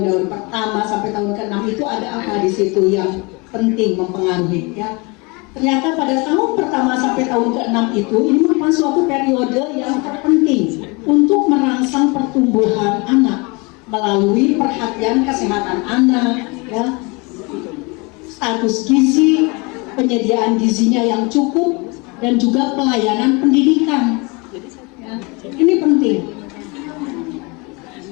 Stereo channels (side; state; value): right; quieter; 28.2 dB